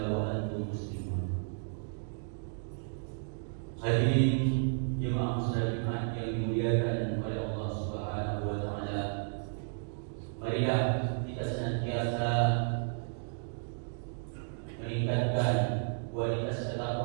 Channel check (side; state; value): left; silent; digital silence